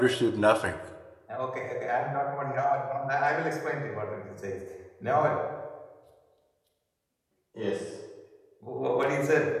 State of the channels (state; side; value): identical; both; correlation 1.00